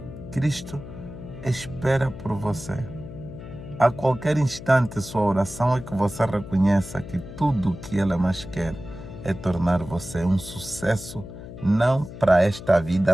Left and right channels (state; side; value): noise; left; hum, 13 dB below the sound